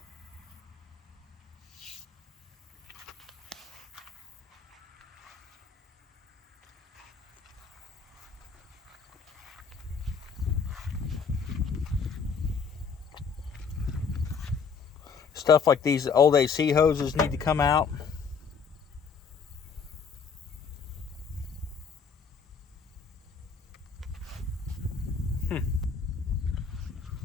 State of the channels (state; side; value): quieter; right; 5.9 dB